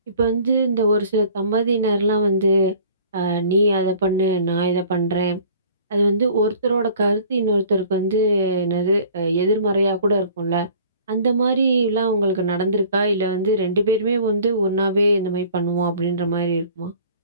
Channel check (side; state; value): both; inverted; correlation -0.50